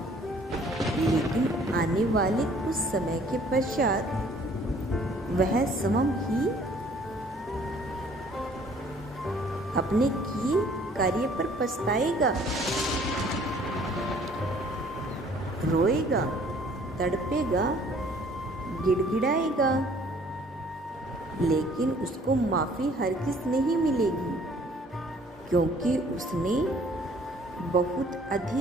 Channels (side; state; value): both; normal; correlation 0.57